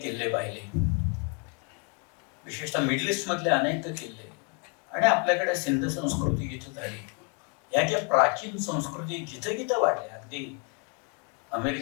पाहिले, विशेषतः मिडल ईस्ट मधले अनेक किल्ले, आणि आपल्याकडे सिंध संस्कृती जिथं झाली, या ज्या प्राचीन संस्कृती जिथं जिथं वाढल्या, अगदी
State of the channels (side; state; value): right; quieter; 35.0 dB